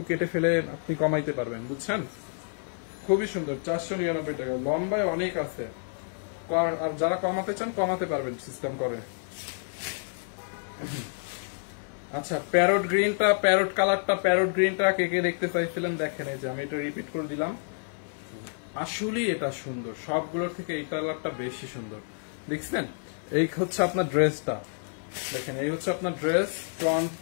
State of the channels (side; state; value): right; silent; 59 dB below the other